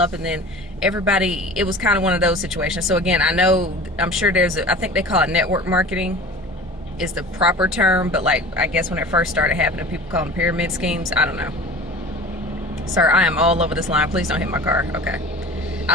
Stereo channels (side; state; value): both; normal; correlation 0.39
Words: and then everybody, it was kind of one of those situations. So again, I'm sure I think they call it network marketing is the proper term, but like, I guess when it first started happening, people call them pyramid schemes. I don't know. Sir, I am all over this line. Please don't hit my car. Okay.